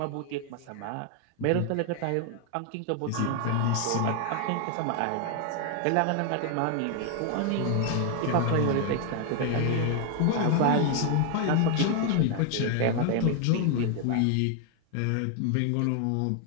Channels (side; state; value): both; different; correlation 0.01